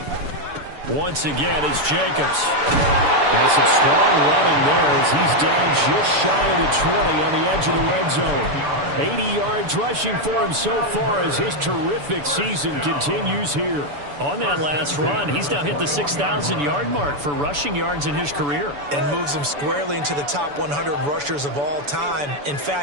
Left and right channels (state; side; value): late; left; 6.9 ms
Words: Once again, it's Jacobs. There's some strong running there as he's down just shy of the 20 on the edge of the red zone. 80 yards rushing for him so far as his terrific season continues here. On that last run, he's now hit the 6,000-yard mark for rushing yards in his career. And moves him squarely into the top 100 rushers of all time. In